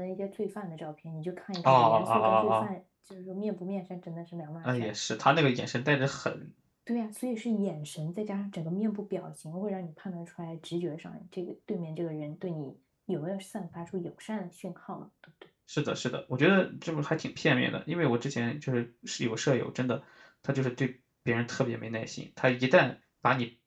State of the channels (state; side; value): identical; both; correlation 1.00